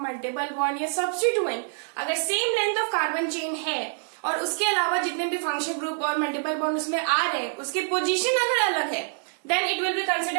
बॉन्ड या सब्स्टिट्यूएंट अगर same length of carbon chain है और उसके अलावा जितने भी फंक्शन ग्रुप और मल्टीपल बॉन्ड उसमें आ रहे हैं उसकी पोजीशन अगर अलग है, then it will be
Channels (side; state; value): left; silent; 58 dB below the other